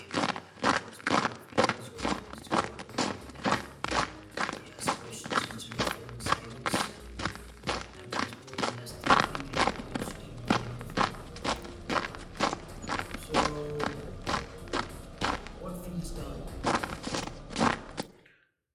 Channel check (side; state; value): both; identical; correlation 1.00